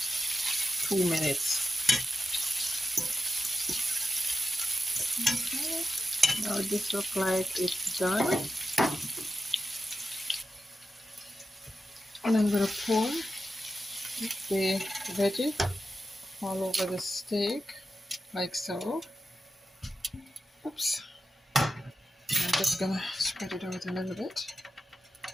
2 minutes. Okay. Now this looks like it's done. And I'm going to pour the veggie all over the steak, like so. Oops. I'm just going to spread it out a little bit.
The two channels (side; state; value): both; normal; correlation 0.91